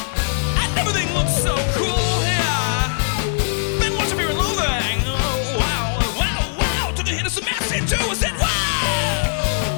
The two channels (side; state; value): right; silent; digital silence